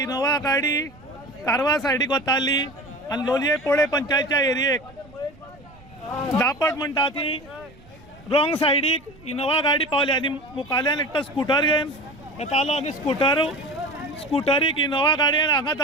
गाडी कारवार सायडीक वताली आनी लोलये पोळे पंचायतच्या एरियेक दापट म्हणटा ती रॉंग सायडीक इनोवा गाडी पावली आनी मुखाल्यान एकटो स्कूटर घेवन येतालो आनी स्कूटरीक इनोवा गाडयेन हांगा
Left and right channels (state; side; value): noise; right; rumble, 24 dB below the sound